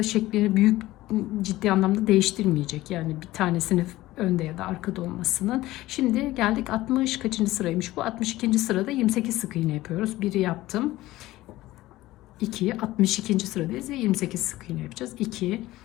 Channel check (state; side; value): quieter; right; 17.0 dB